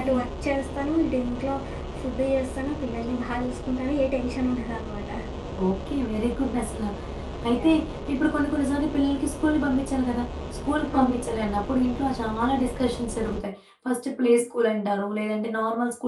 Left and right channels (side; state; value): both; identical; correlation 1.00